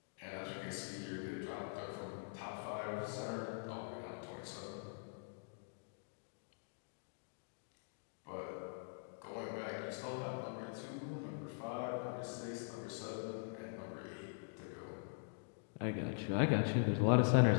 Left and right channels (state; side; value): silent; right; digital silence